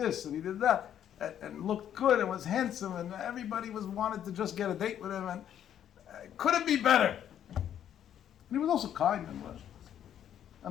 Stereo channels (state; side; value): quieter; right; 10.1 dB